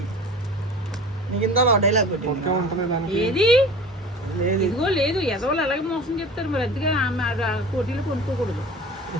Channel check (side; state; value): both; normal; correlation 0.39